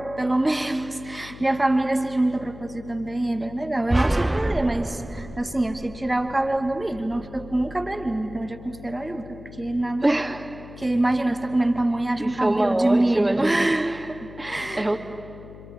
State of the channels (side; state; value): left; noise; hum, 16 dB below the sound